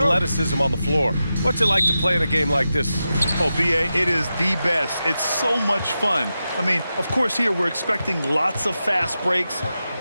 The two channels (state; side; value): inverted; both; correlation -0.91